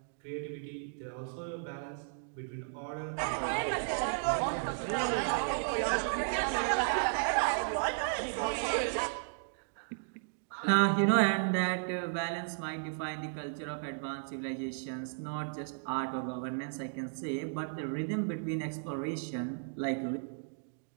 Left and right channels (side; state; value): left; silent; digital silence